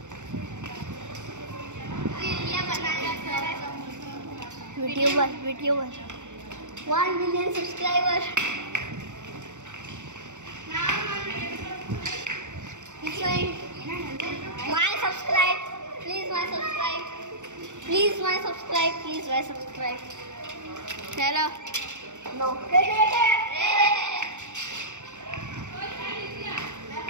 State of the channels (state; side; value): late; left; 0.85 ms